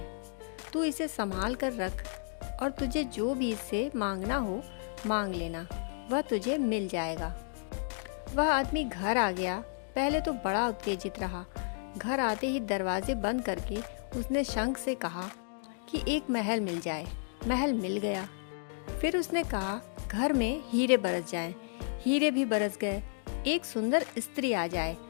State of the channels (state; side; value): silent; right; digital silence